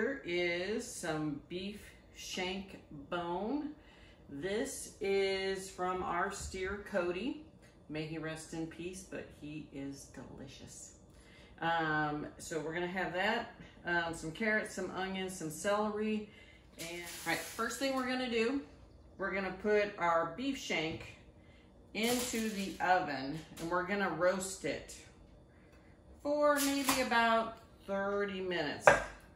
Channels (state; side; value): identical; both; correlation 1.00